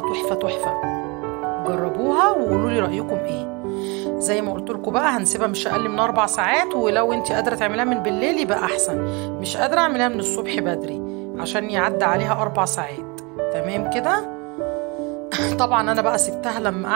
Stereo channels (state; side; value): quieter; left; 28.8 dB